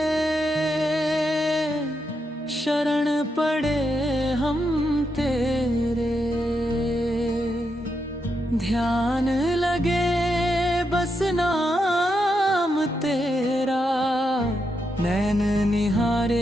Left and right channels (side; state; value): both; normal; correlation 0.83